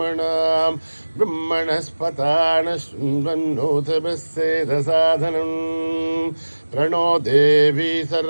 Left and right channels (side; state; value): both; inverted; correlation -1.00